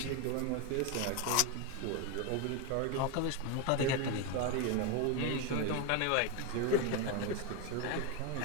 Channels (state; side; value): different; both; correlation 0.02